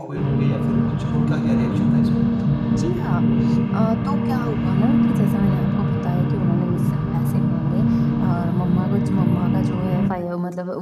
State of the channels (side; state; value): both; identical; correlation 1.00